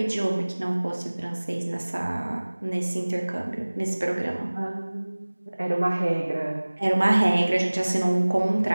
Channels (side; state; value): both; inverted; correlation -1.00